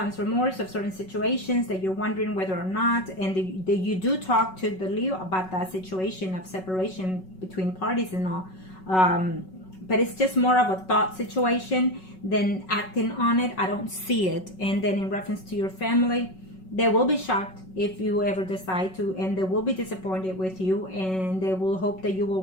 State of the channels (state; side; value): late; right; 5.4 ms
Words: remorse of certain situations, that you're wondering whether or not, and that you do talk to the Leo about that situation of separation between parties and all. But it's just more of a thought situation than acting on it. I don't see it. And then in reference to your family, they will be shocked if you ever decide to, and they will be disappointed with you, and they will hope that you